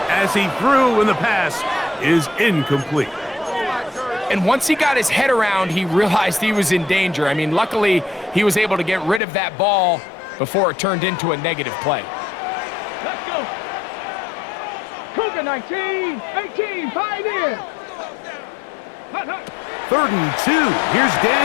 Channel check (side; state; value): right; drops out; at 9.2 s